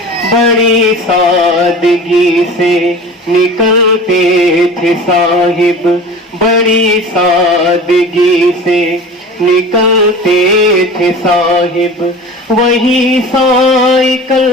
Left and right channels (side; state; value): both; normal; correlation 0.37